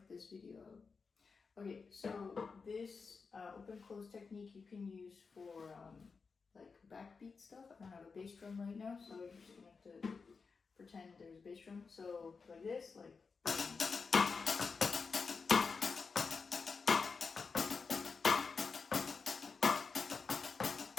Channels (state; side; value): quieter; right; 4.9 dB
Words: this video out. Okay, so this open-close technique you can use for like backbeat stuff. I don't have a bass drum right now, so you're just gonna have to pretend there's a bass drum. So like this, like.